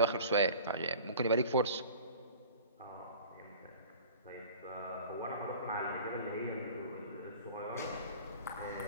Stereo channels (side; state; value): both; inverted; correlation -0.42